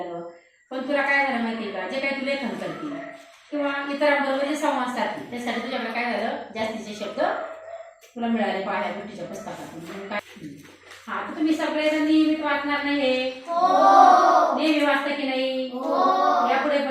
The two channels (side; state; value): both; identical; correlation 1.00